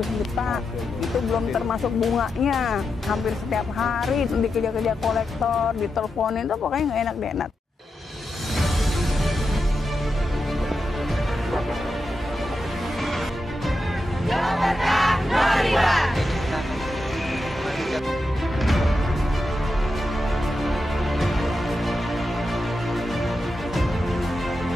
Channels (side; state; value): both; normal; correlation 0.88